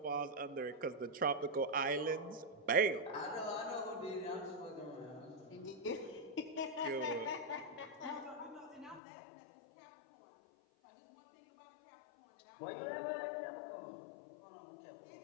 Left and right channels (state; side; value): drops out; right; at 9.0 s